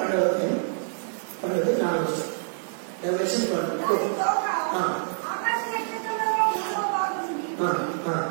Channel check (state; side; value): silent; left; digital silence